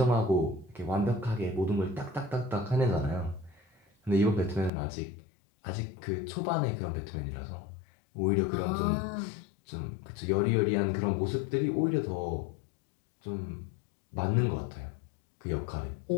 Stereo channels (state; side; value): drops out; right; at 4.7 s